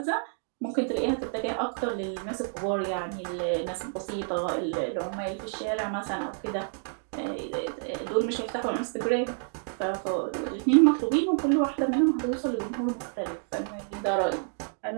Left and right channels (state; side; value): silent; left; digital silence